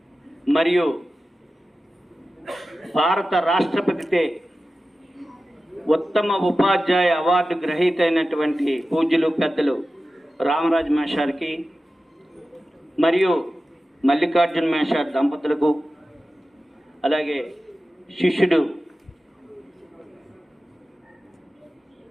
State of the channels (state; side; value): normal; both; correlation 0.94